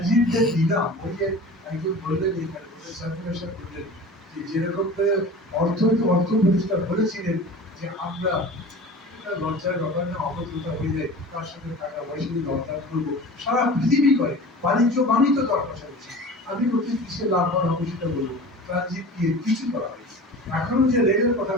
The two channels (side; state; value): both; normal; correlation 0.37